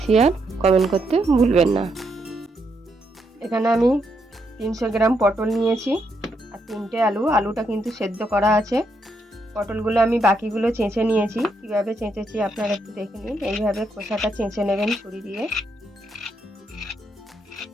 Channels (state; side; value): normal; both; correlation 0.78